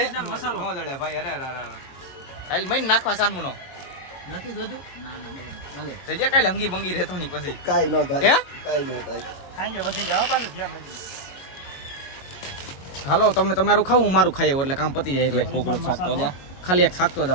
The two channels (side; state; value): right; late; 22 ms